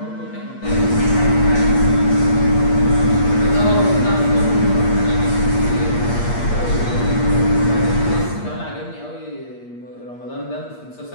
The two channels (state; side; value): late; right; 8.4 ms